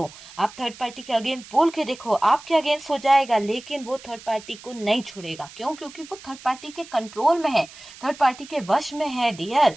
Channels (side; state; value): right; noise; hiss, 18 dB below the sound